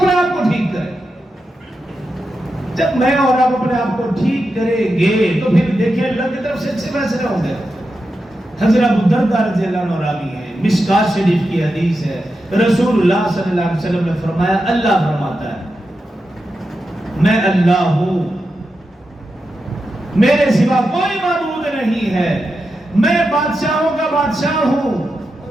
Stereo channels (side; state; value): both; normal; correlation 0.89